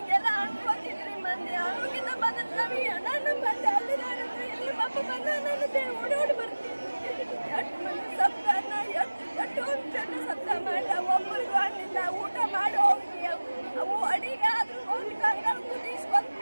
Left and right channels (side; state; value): both; inverted; correlation -1.00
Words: ಅನ್ಕೋತಿದ್ರಿ. ಮಂದಿ ಆರೋಗ್ಯದ ಬಂದ ನಮಗೆ ನಾನು ಬಂದೆ ಅಲ್ಲಿ ಇಲ್ಲಿ ಅಪ್ಪ ಬಂದ ನನ್ನ ಓಡೋಡಿ